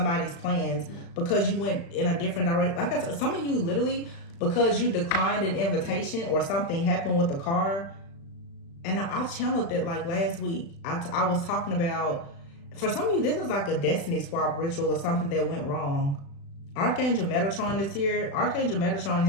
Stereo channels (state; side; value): late; right; 35 ms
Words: plans because you went in a different direction. Like I said, some of you literally, because you declined an invitation or something happened with the car. And I channeled that like last week. I was talking about, for some of you, this is like a destiny swap ritual or something that went wrong. Archangel Metatron is here. Archangel Metatron